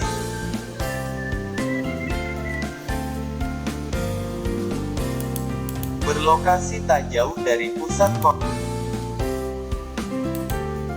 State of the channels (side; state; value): both; identical; correlation 1.00